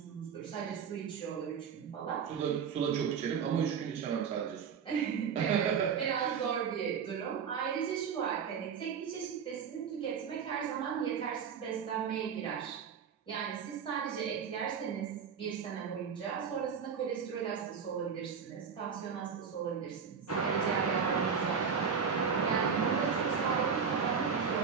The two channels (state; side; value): quieter; left; 6.7 dB